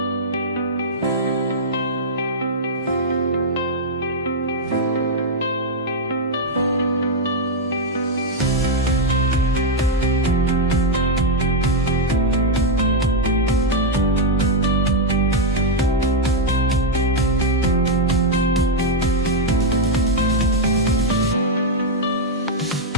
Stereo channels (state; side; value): normal; both; correlation -0.01